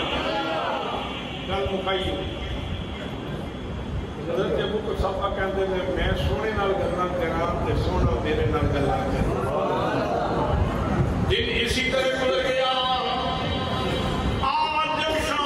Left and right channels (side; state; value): both; identical; correlation 1.00